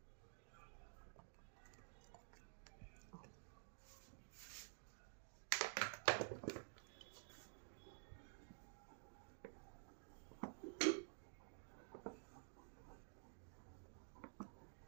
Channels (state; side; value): silent; left; digital silence